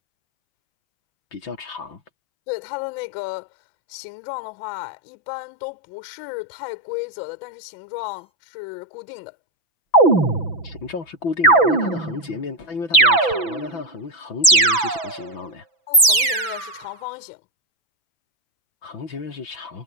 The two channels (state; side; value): late; right; 6.0 ms